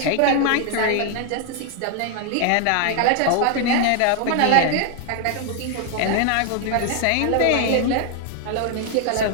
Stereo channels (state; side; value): different; both; correlation 0.00